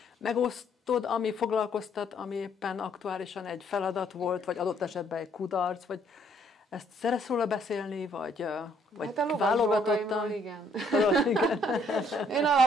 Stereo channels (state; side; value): normal; both; correlation 0.66